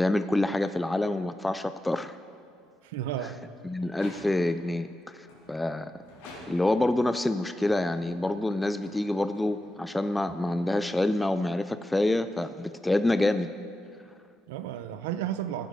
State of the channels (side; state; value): both; normal; correlation 0.90